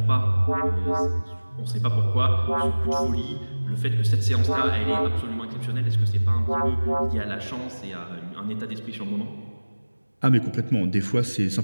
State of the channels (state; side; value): inverted; both; correlation -1.00